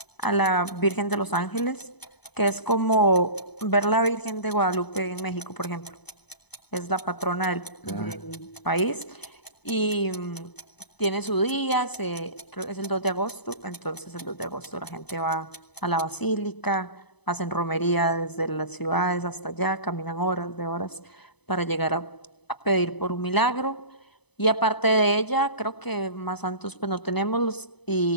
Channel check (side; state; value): right; late; 0.99 ms